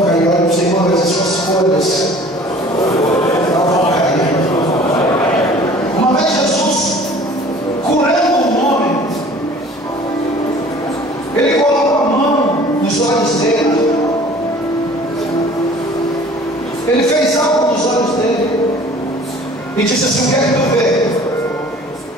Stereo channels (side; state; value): both; normal; correlation 0.48